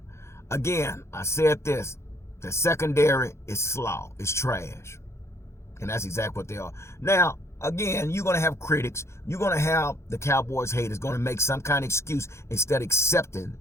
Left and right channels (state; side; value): late; right; 0.13 ms